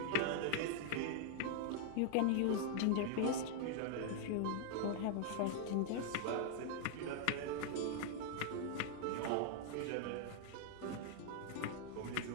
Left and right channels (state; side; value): different; both; correlation 0.00